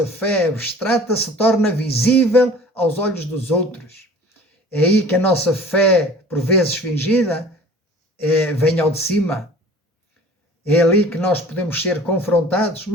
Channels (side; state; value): both; normal; correlation 0.46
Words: fé abstrata se torna visível aos olhos dos outros. É aí que a nossa fé, por vezes fingida, vem ao de cima. É ali que nós podemos ser confrontados,